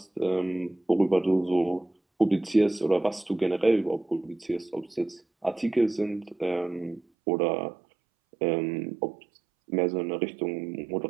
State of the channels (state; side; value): drops out; left; at 7.0 s